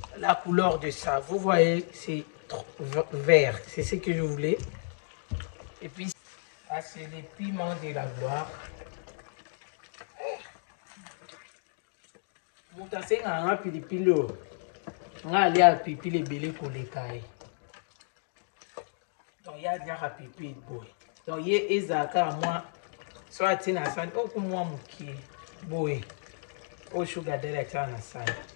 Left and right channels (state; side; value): silent; right; digital silence